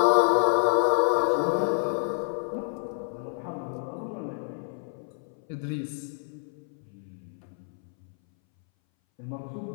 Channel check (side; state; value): right; silent; 59 dB below the other